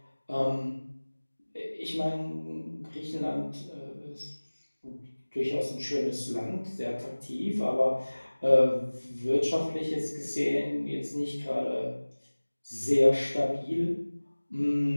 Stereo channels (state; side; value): inverted; both; correlation -1.00